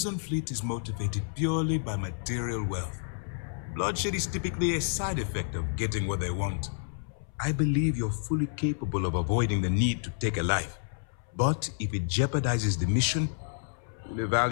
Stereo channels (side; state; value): right; silent; 58 dB below the other